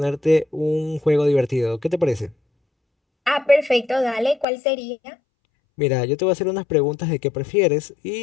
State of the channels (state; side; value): drops out; right; at 4.5 s